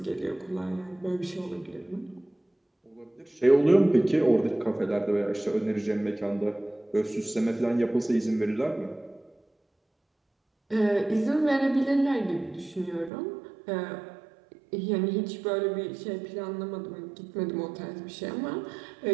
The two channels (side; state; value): left; drops out; at 13.1 s